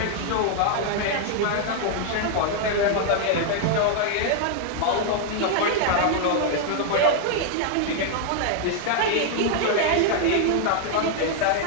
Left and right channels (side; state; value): both; different; correlation 0.00